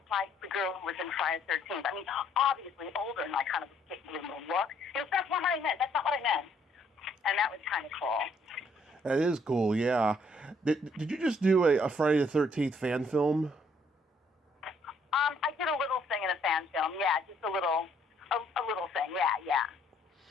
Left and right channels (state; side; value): normal; both; correlation 0.66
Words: like the girl who was in Friday the 13th. I mean, obviously older, and I kind of gave you a little look. He goes, that's not what I meant. That's not what I meant. And that was kind of cool. That is cool, yeah. Did you just do a Friday the 13th fan film? I did a little thing in a fan film, yeah, just a little thing, yeah.